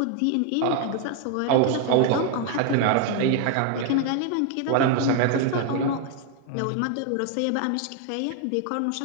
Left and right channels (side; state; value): both; different; correlation 0.00